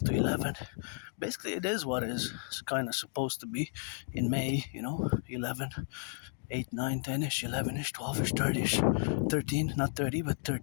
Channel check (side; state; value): right; silent; 56 dB below the other